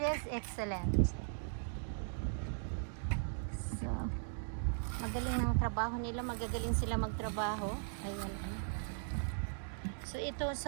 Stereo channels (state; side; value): silent; left; digital silence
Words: is excellent. So magaling ng trabaho nila, magagaling sila magtrabaho. Ayan. So ito